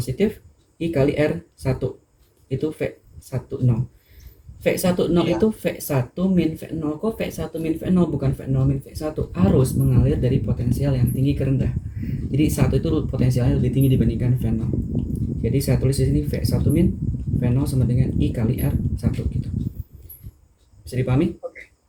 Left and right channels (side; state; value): both; identical; correlation 1.00